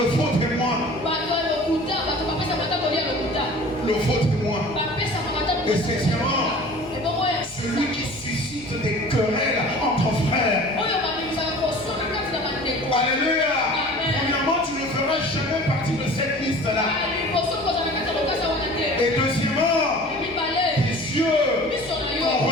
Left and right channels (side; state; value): left; noise; hum, 22 dB below the sound